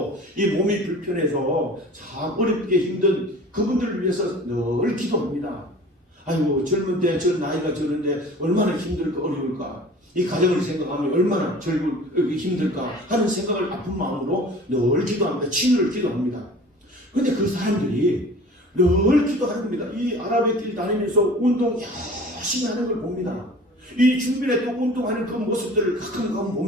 이 몸이 불편해서 참 어렵게 힘든 그분들을 위해서 늘 기도합니다. 아이고, 젊은 때 저 나이가 저런데 얼마나 힘들까 어려울까, 이 가정을 생각하면 얼마나 힘들까 하는 생각을 아픈 마음으로 늘 기도합니다. 치유를 기도합니다. 그런데 그 사람들이 늘 기도하는 겁니다. 이 아랍의 길 다니면서 운동 열심히 하는 걸 봅니다. 이 주변에 또 운동하는 그 모습들을 가끔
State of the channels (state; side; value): normal; both; correlation 0.43